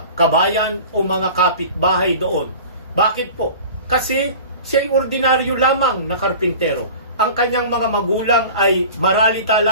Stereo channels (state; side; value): inverted; both; correlation -0.39